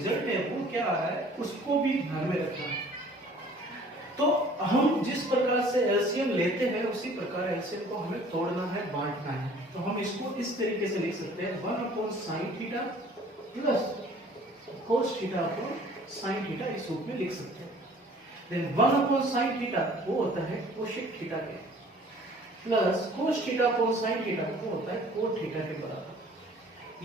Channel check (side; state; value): both; normal; correlation 0.52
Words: है वो क्या आ रहा है उसको भी ध्यान में रखना है। तो हम जिस प्रकार से एलसीएम लेते हैं उसी प्रकार एलसीएम को हमें तोड़ना है, बांटना है। तो हम इसको इस तरीके से लिख सकते हैं 1 upon sine theta plus cos theta upon sine theta इस रूप में लिख सकते हैं। देन 1 अपॉन साइन थीटा वो होता है कोसेक थीटा के, plus cos theta upon sine theta वो होता है कोट थीटा के बराबर।